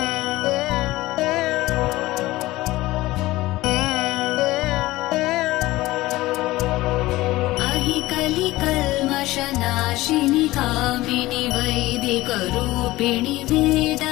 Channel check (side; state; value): right; quieter; 18.1 dB